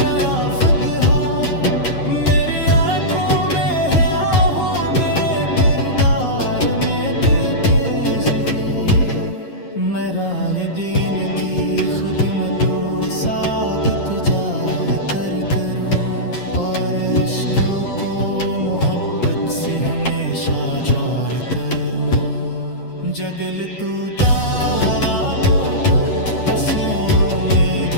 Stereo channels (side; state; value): right; late; 9.5 ms